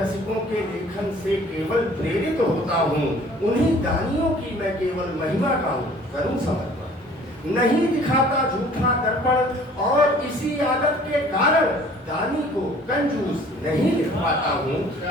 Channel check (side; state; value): both; normal; correlation 0.52